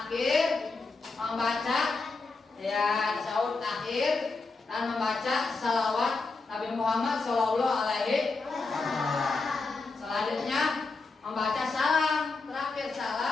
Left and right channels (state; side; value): quieter; right; 3.9 dB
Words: membaca ya tasyahud akhir dan membaca salawat Nabi Muhammad Shallallahu Alaihi Wasallam. Selanjutnya membaca salam, terakhir